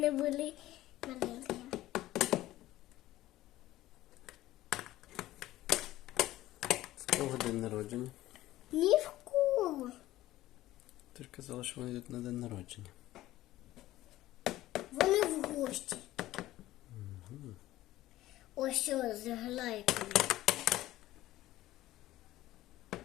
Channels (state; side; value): quieter; right; 15.7 dB